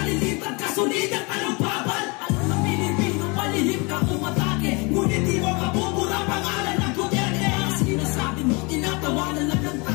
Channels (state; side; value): quieter; right; 28.8 dB